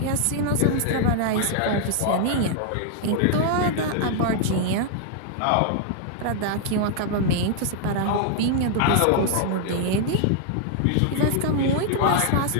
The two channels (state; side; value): different; both; correlation -0.01